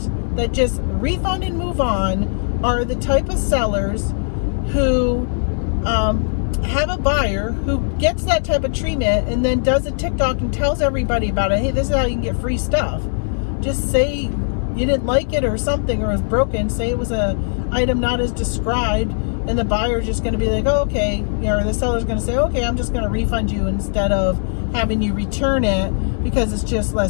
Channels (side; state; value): right; silent; 59 dB below the other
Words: that just refund and move on are the type of sellers who have a buyer who gets that type of treatment and then does a TikTok and tells everybody about it. Hey, this is how you can get free stuff. Just say you didn't like it or something, or it was broken. Say it was a item not as described. And the buyer's just going to be like, oh, okay, or the seller's going to say, okay, I'm just going to refund you instead of having you return it because it's just